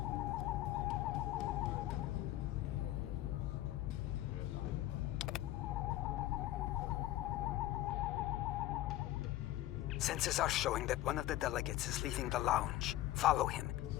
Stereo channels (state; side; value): quieter; right; 14.9 dB